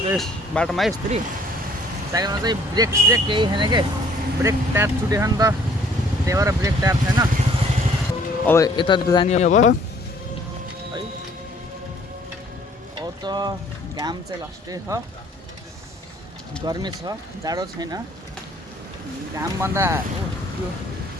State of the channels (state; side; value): normal; both; correlation 0.59